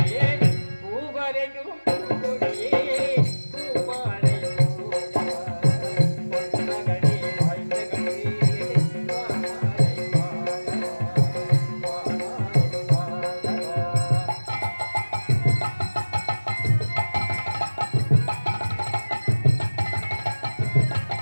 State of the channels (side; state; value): both; inverted; correlation -1.00